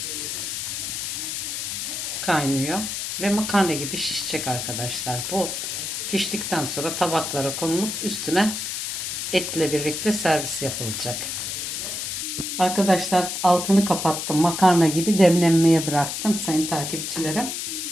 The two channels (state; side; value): noise; left; hiss, 4 dB below the sound